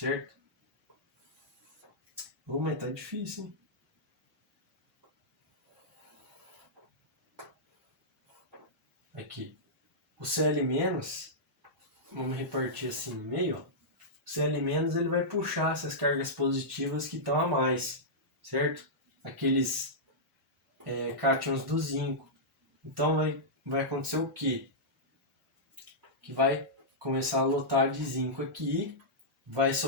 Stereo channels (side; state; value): both; normal; correlation -0.12